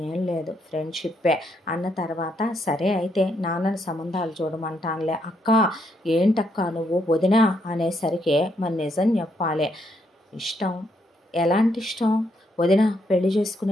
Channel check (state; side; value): normal; both; correlation 0.75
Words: ఏం లేదు ఫ్రెండ్షిప్పే అన్న తర్వాత సరే అయితే నాన్నని సంబంధాలు చూడమంటానులే. అక్క ఏంటక్క నువ్వు వదినా అనేసరికి మరి నిజం చెప్పాలి. ఇష్టం ఎలాంటి ఇష్టం? వదిన పెళ్లి